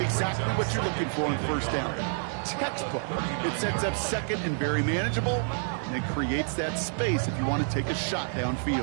Exactly what you're looking for in first down. Textbook. It sets up second and very manageable, and it creates that space if you want to take a shot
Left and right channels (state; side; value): silent; left; 59 dB below the other